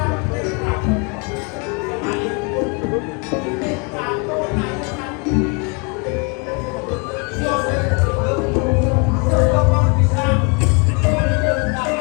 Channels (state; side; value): quieter; right; 33.7 dB